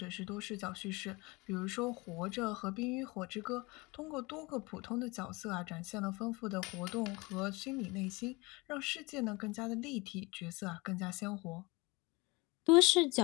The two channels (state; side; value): quieter; right; 24.9 dB